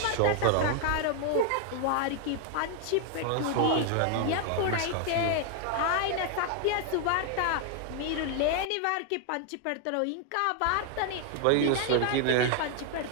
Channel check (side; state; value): both; different; correlation 0.00